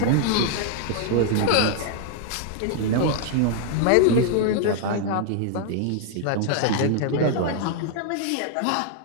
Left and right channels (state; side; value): different; both; correlation 0.00